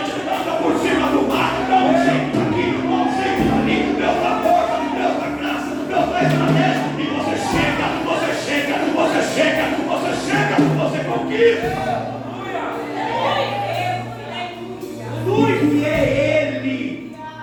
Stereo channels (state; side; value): identical; both; correlation 1.00